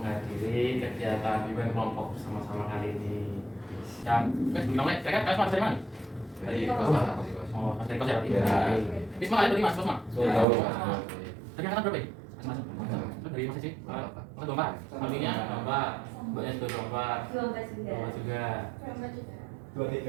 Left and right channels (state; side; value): drops out; left; at 10.5 s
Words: kegiatan event kelompok bersama-sama kali ini. Dan, namanya, saya kan kalian dari mana? Dari kos. Oh, mas dari kos ya? Iya. Di semua kalian dari mas, kos mas? Tahu. Tadi angkatan berapa ya? Masing-masing? Dari mas sih? Angkatan 24? Artinya 24, mbaknya juga 24 juga